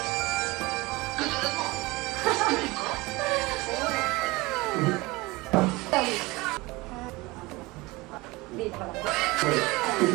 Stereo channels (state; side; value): quieter; left; 22.6 dB